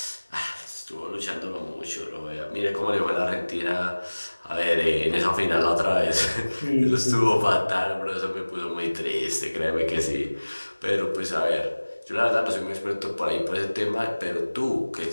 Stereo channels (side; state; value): both; inverted; correlation -1.00